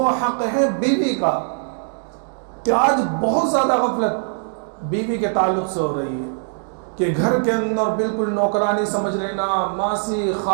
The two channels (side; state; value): left; silent; digital silence